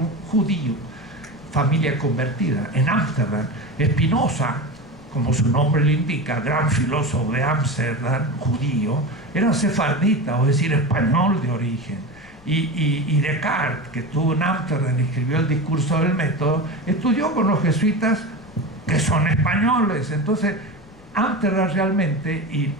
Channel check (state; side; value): noise; left; rumble, 23 dB below the sound